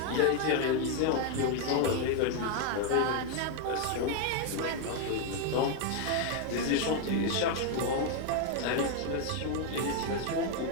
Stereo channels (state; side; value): different; both; correlation 0.01